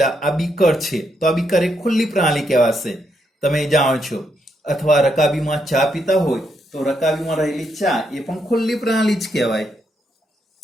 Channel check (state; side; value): normal; both; correlation 0.79